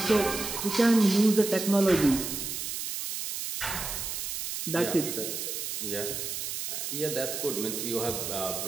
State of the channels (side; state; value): right; noise; hiss, 4 dB below the sound